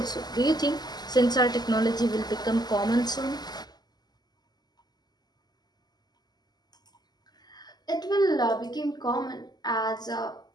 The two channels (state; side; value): late; right; 0.20 ms